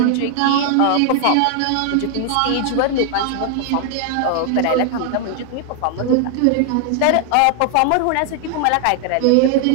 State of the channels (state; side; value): different; both; correlation 0.00